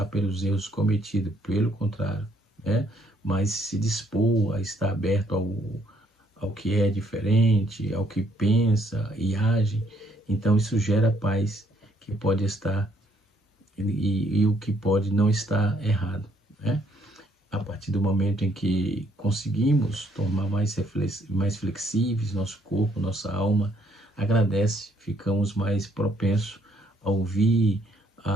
pelos erros cometidos, pelo contrário, né? Mas se dispor a estar aberto ao que é diferente, ao que pensa e age. Então isso gera paz, que pode estar e o que pode não estar errado, né? A partir do momento em que conseguimos tornar mais flexíveis nosso corpo, nossa alma agradece, ficamos mais propensos a ouvir,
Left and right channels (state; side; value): normal; both; correlation 0.68